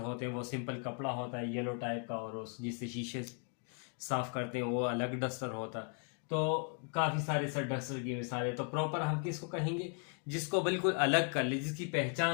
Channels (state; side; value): quieter; right; 39.6 dB